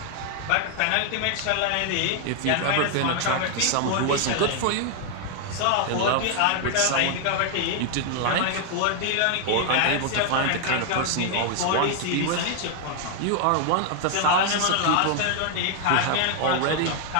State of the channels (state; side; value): different; both; correlation 0.00